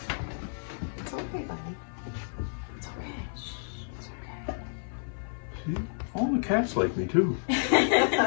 It's okay, buddy. It's okay. It's okay. See? All the cats like me too.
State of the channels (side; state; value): right; silent; 58 dB below the other